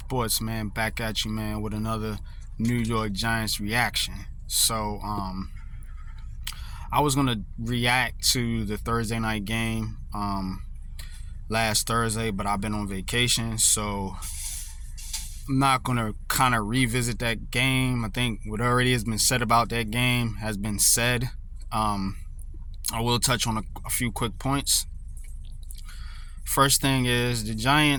man, back at you, man, with another New York Giants reaction. I was gonna react to the Thursday night game last Thursday, but I've been on vacation, so I'm not gonna kind of revisit that game. I think what already has been said about that game has been said. I will touch on a few quick points. First thing is the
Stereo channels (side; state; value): both; identical; correlation 1.00